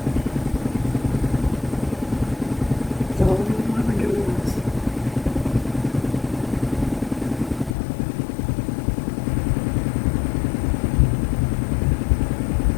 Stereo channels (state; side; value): drops out; right; at 7.8 s